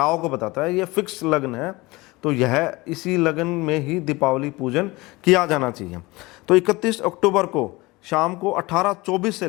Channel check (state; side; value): quieter; right; 22.2 dB